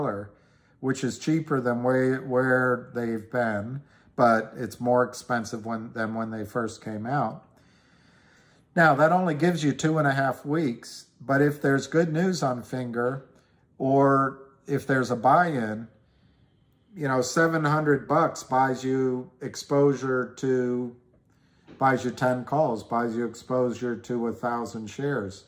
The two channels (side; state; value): both; identical; correlation 1.00